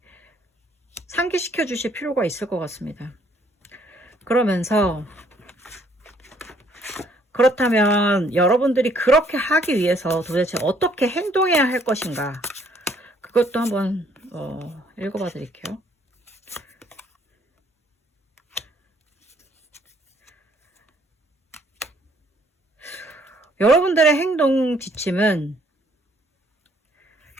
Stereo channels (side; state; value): both; normal; correlation 0.64